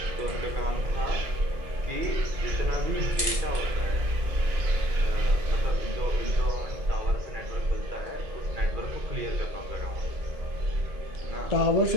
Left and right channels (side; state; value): left; late; 2.2 ms